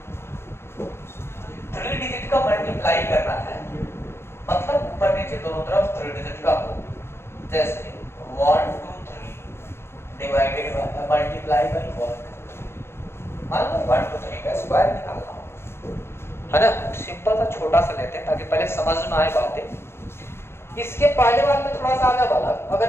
3 डिजिट का मल्टीप्लाई करना है, मतलब ऊपर नीचे दोनों तरफ 3 डिजिट का हो। जैसे 1 2 3 डिवाइडेड बाय मल्टीप्लाई बाय 1, मान लो 1 2 3 का स्क्वायर निकालना हो, है ना। सिंपल सा छोटा सा लेते हैं ताकि पहले समझ में आए बातें। इसके पहले वाले में थोड़ा सा आगे वाला,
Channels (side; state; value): right; late; 0.12 ms